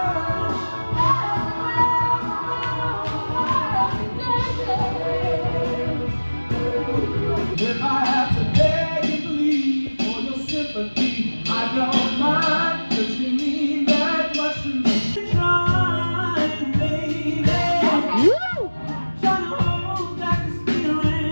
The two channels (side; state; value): both; inverted; correlation -1.00